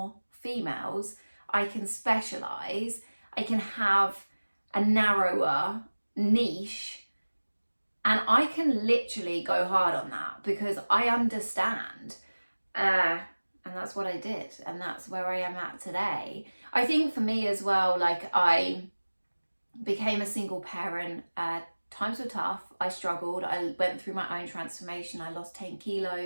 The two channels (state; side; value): inverted; both; correlation -1.00